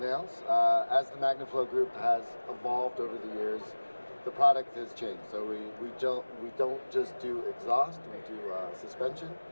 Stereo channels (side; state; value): both; inverted; correlation -1.00